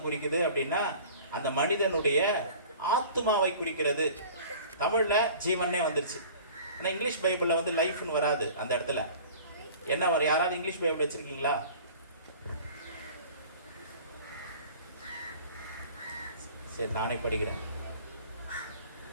குறிக்குது அப்படின்னா அந்த மனிதனுடைய ஆத்மாவை குறிக்கிறது. தமிழ்ல ஜீவனே வந்துருச்சு. ஆனா இங்கிலீஷ் பைபிள்ல வந்து லைஃப்னு வராது. அந்த இடத்துல என்ன வரும்? யாராவது இங்கிலீஷ் பைபிள் வச்சிருக்கீங்களா? சரி, நானே படிக்கிறேன்.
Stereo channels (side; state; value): both; inverted; correlation -0.45